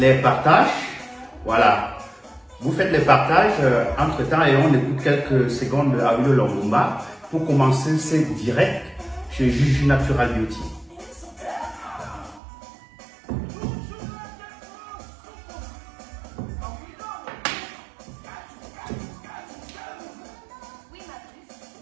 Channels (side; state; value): left; drops out; at 12.4 s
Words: partages. Voilà. Vous faites les partages entre-temps et on écoute quelques secondes de Awilo Longomba pour commencer ce direct chez Gigi Natural Beauty.